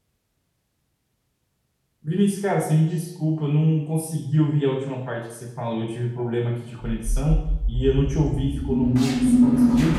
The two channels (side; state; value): both; identical; correlation 1.00